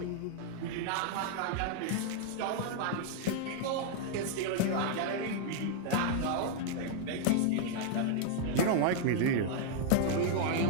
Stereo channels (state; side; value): different; both; correlation 0.00